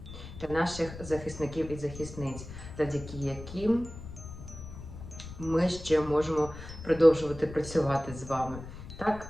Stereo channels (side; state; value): left; noise; rumble, 12 dB below the sound